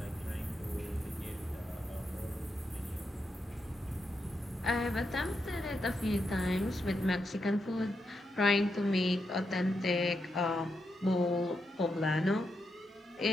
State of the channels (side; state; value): both; normal; correlation 0.84